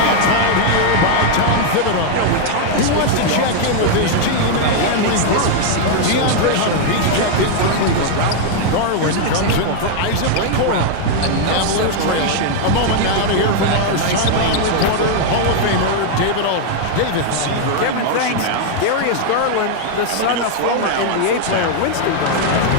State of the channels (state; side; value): different; both; correlation 0.00